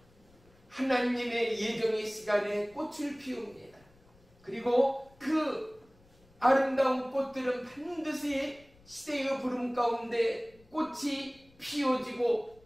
하나님의 예정의 시간에 꽃을 피웁니다. 그리고 그 아름다운 꽃들은 반드시 시대의 부름 가운데 꽃이 피어지고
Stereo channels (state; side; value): noise; left; rumble, 29 dB below the sound